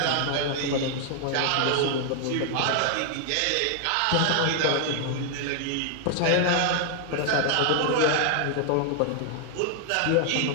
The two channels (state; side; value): different; both; correlation 0.00